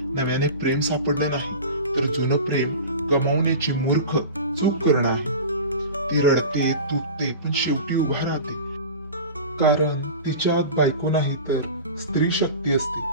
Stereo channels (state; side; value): inverted; both; correlation -0.34